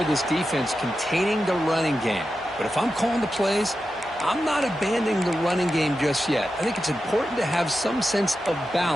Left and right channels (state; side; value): normal; both; correlation 0.91